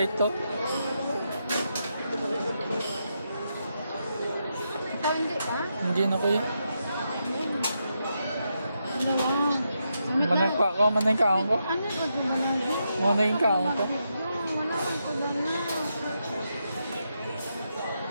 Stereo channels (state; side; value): inverted; both; correlation -0.83